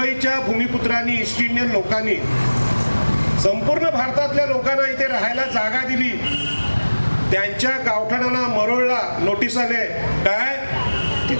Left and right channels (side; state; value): both; inverted; correlation -1.00